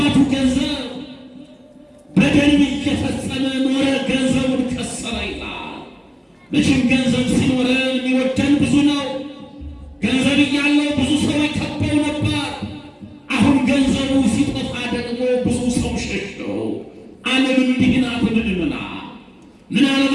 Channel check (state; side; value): identical; both; correlation 1.00